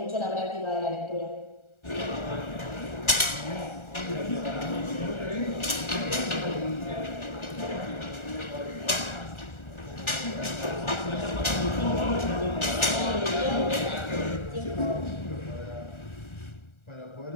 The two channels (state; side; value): late; right; 1.4 ms